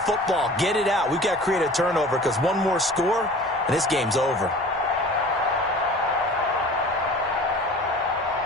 Get it out. We've got to create a turnover because one more score, and this game's over.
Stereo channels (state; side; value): normal; both; correlation 0.42